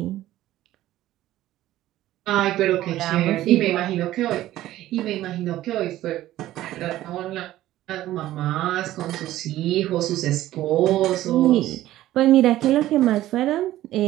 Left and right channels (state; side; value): quieter; left; 14.6 dB